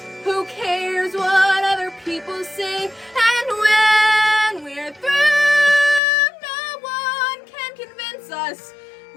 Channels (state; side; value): drops out; right; at 6.0 s